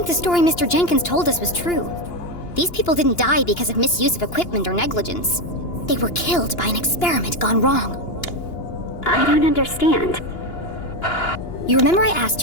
the story Mr. Jenkins told us was true. These people didn't die because of misuse of equipment or negligence. They were killed by an experiment gone wrong. I don't understand. You remember I asked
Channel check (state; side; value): late; right; 2.9 ms